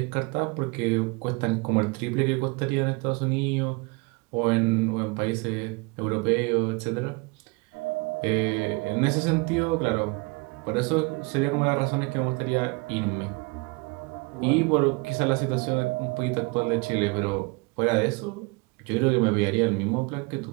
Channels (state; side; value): quieter; left; 28.2 dB